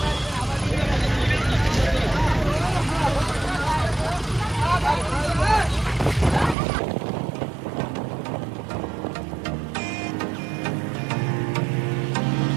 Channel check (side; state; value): left; drops out; at 6.6 s